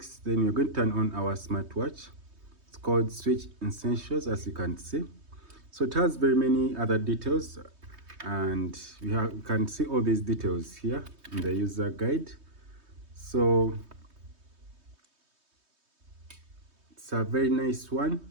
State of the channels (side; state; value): left; late; 3.2 ms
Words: Then you're going to turn on our smartwatch. It's called Switch Essentials, as you can see. So it has very many other details, and you can see all these details here in the user guide. So it's a very nice